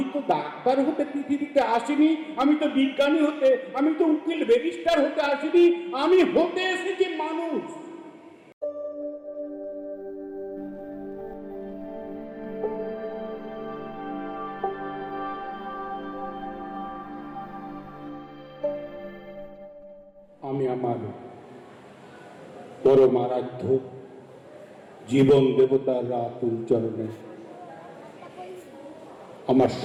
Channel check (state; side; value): identical; both; correlation 1.00